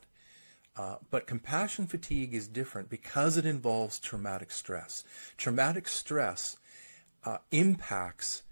But compassion fatigue is different because it involves traumatic stress. Traumatic stress impacts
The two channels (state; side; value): inverted; both; correlation -1.00